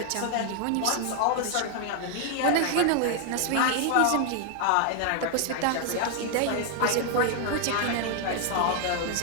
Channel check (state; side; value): different; both; correlation 0.00